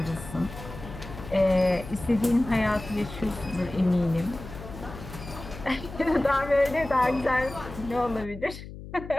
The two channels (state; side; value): noise; left; hum, 13 dB below the sound